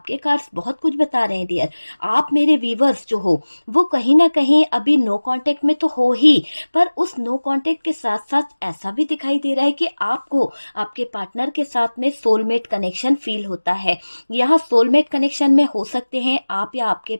कार्ड्स बहुत कुछ बता रहे हैं डियर। आप मेरे व्यूवर्स जो हो वो कहीं ना कहीं अभी नो कांटेक्ट में तो हो ही, पर उस नो कांटेक्ट के साथ साथ ऐसा भी दिखाई दे रहा है कि आपको आपके पार्टनर के साथ में सोलमेट कनेक्शन फील होता है। यहाँ सोलमेट कनेक्शन में हो सकते हैं आप या आपके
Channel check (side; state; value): both; inverted; correlation -1.00